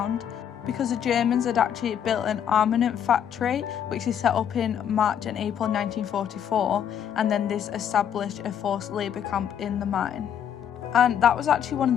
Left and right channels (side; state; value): right; quieter; 9.0 dB